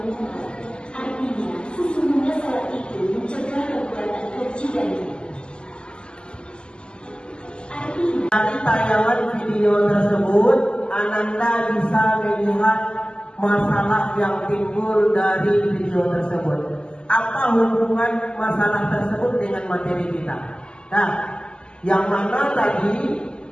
Artinya, sesungguhnya sholat itu mencegah perbuatan keji dan Dari tayangan video tersebut, Ananda bisa melihat masalah yang timbul dari video tersebut. Apa hubungan masalah tersebut dengan materi kita? Nah, yang mana tadi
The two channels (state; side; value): late; right; 0.049 ms